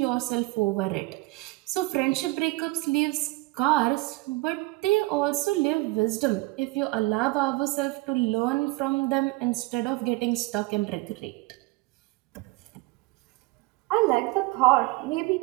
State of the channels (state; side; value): quieter; left; 22.4 dB